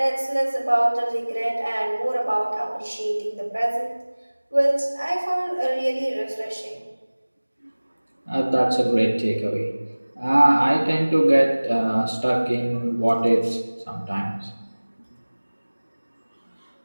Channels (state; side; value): inverted; both; correlation -1.00